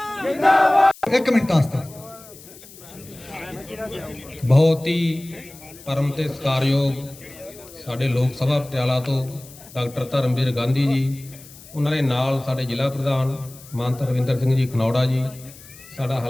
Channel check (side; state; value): left; noise; hiss, 20 dB below the sound